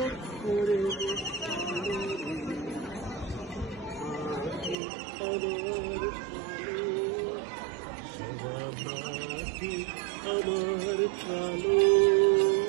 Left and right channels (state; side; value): drops out; left; at 4.8 s